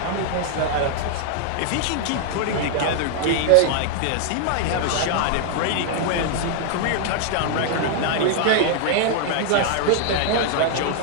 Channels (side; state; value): both; different; correlation -0.01